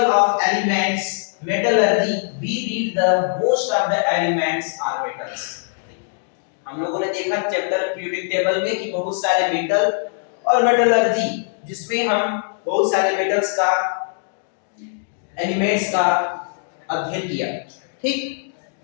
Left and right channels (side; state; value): right; silent; digital silence